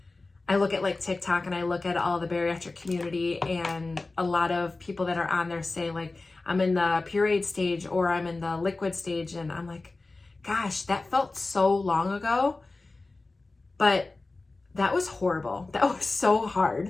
I look at like TikTok and I look at all the bariatric community, and a lot of people that are on there say like, I'm in the pureed stage or I'm in the liquid stage, and I'm like, gosh, that felt so long ago, but that was horrible. That was so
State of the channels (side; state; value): right; quieter; 3.4 dB